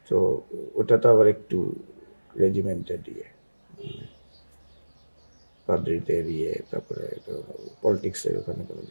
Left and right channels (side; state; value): both; inverted; correlation -1.00